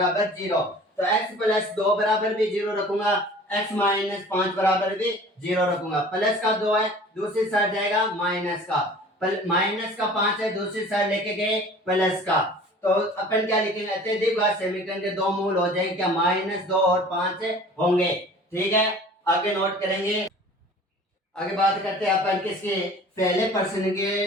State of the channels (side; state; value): both; normal; correlation 0.45